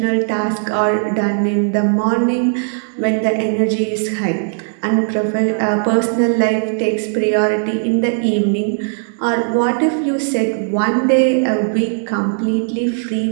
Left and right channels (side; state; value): left; silent; digital silence